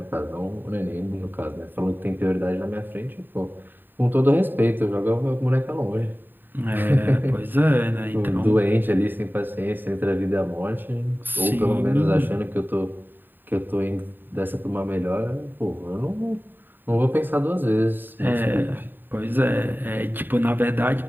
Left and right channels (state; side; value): late; left; 0.093 ms